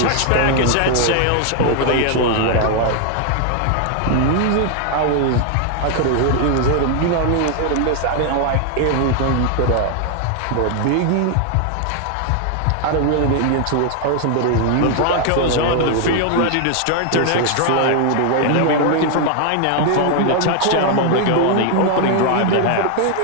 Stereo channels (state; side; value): different; both; correlation 0.00